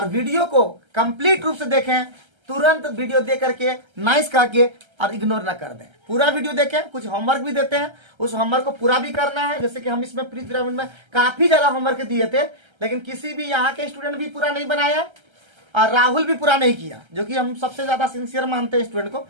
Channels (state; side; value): late; left; 1.3 ms